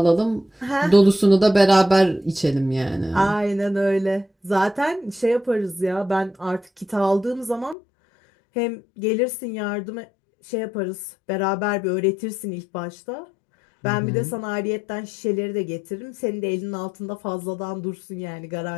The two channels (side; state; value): right; drops out; at 7.8 s